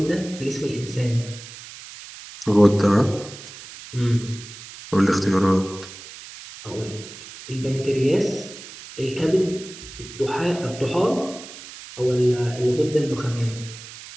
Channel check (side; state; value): right; noise; hiss, 15 dB below the sound